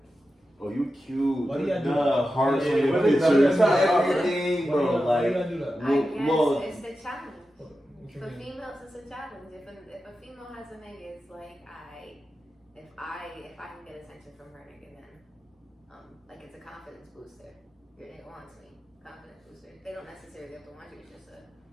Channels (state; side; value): normal; both; correlation 0.91